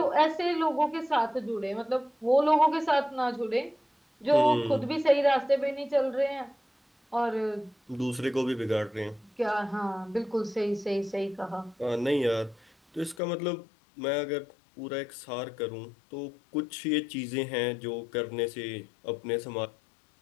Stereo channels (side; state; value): right; drops out; at 13.2 s